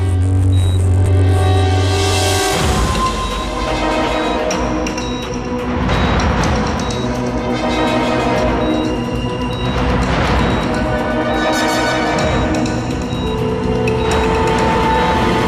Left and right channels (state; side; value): identical; both; correlation 1.00